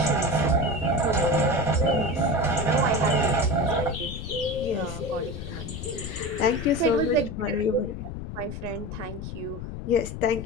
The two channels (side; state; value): left; noise; rumble, 8 dB below the sound